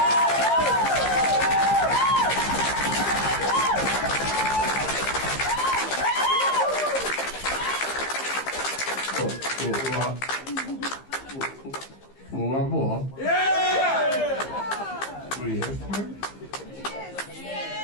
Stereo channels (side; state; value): right; late; 15 ms